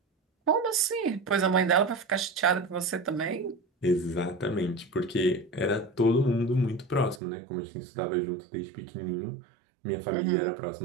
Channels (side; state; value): left; drops out; at 7.2 s